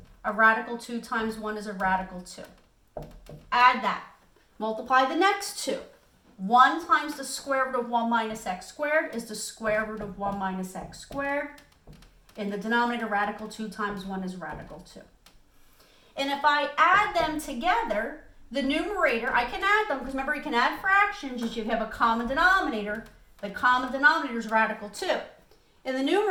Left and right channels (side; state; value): both; identical; correlation 1.00